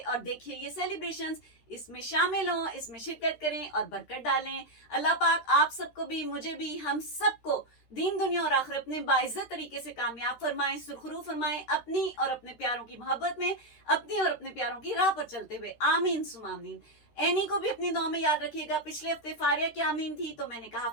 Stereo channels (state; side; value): late; right; 13 ms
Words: देखिए ये सेलिब्रेशन। इसमें शामिल हों, इसमें शिरकत करें और बरकत डालें। अल्लाह पाक आप सबको भी, मुझे भी, हम सबको दीन दुनिया और आखिरत में बाइज्जत तरीके से कामयाब फरमाएं, सुरखरू फरमाएं, अपनी और अपने प्यारों की मोहब्बत में, अपनी और अपने प्यारों की राह पर चलते हुए। आमीन सुमामीन। एनी को भी अपनी दुआ में याद रखिएगा। पिछले हफ्ते फारिया की आमीन थी तो मैंने कहा